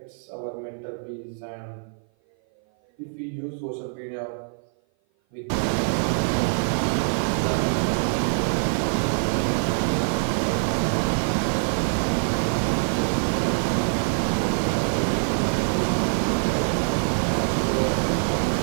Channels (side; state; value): left; silent; 56 dB below the other